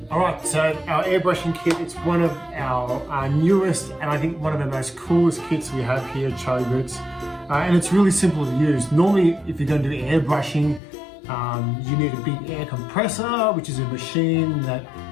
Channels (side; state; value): right; drops out; at 10.8 s